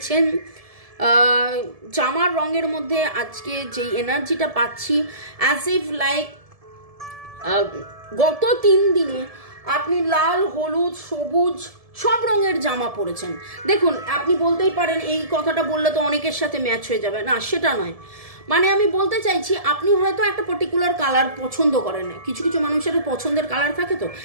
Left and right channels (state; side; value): late; left; 1.7 ms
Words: জামার রঙের মধ্যে আজকে যেই এনার্জিটা পাচ্ছি, অ্যাজ ইফ লাইক গত 3 দিনে আপনি লাল, হলুদ, সবুজ, সব রঙের জামা পরেছেন। দেখুন, আপনি বলতেই পারেন এই কথাটা বললে তো অনেকের সাথে ম্যাচ হয়ে যাবে, না সেটা নয়। মানে আমি বলতে চাইছি, আপনি হয়তো একটা পার্টিকুলার কালার পছন্দ করেন না, কিছু কিছু মানুষের পছন্দের কালার থাকে তো,